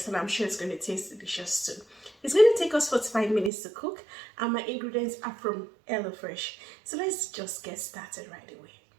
and I'm sure it's going to taste delicious too. It's going to take us 45 minutes to cook, and my ingredients are from HelloFresh. So let's just get started right away.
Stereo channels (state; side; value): drops out; left; at 3.5 s